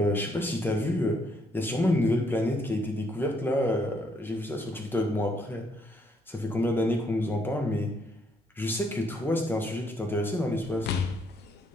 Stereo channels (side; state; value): both; normal; correlation 0.71